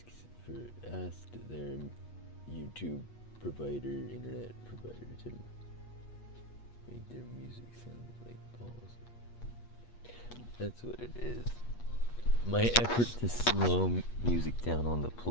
their YouTube provider, internet provider to make their music sound like balls. That's what it is. My effort to slow music down on the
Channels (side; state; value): right; late; 8.4 ms